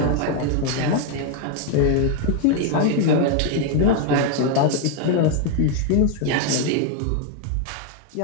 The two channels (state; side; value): different; both; correlation 0.01